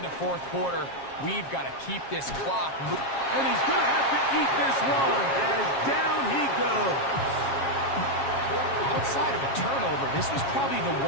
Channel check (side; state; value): right; late; 7.4 ms